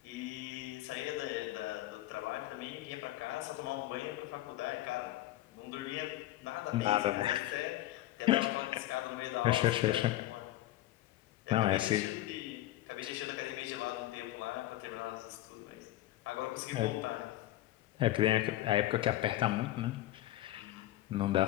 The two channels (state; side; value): quieter; right; 15.0 dB